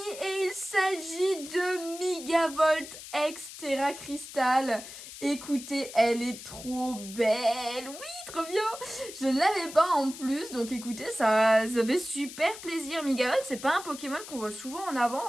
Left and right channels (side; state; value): left; noise; hiss, 13 dB below the sound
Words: Et il s'agit de Megavolt X Terra Crystal. Écoutez, elle est trop belle. Oui, trop bien. Je ne l'avais pas en plus. Donc écoutez, ça fait super plaisir. Megavolt, c'est pas un Pokémon qu'on voit souvent en avant